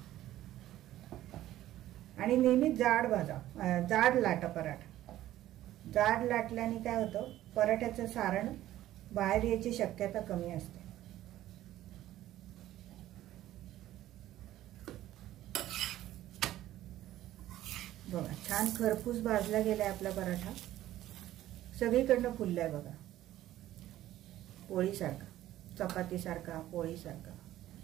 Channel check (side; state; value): left; quieter; 13.9 dB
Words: आणि नेहमी जाड भाजा, जाड लाटा पराठा. जाड लाटल्याने काय होतं, पराठ्याचं सारण बाहेर यायची शक्यता कमी असते. बघा छान खरपूस भाजला गेलाय आपला पराठा. सगळीकडनं फुललाय बघा, पोळीसारखा, चपातीसारखा, पोळीसारखा.